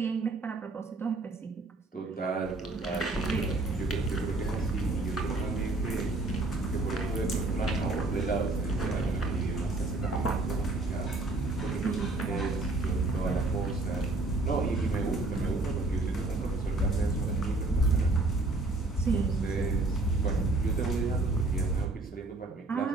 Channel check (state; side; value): quieter; left; 3.0 dB